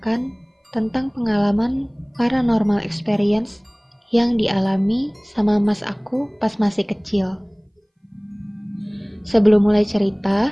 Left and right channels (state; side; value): identical; both; correlation 1.00